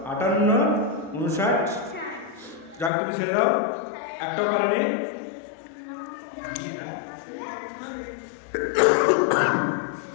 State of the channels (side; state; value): right; drops out; at 2.9 s